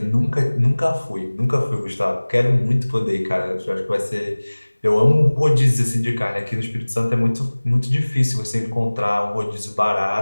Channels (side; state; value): both; inverted; correlation -1.00